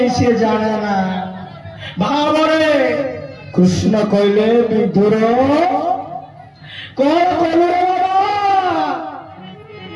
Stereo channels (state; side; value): identical; both; correlation 1.00